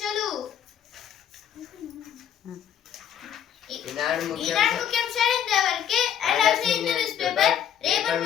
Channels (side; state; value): right; quieter; 9.6 dB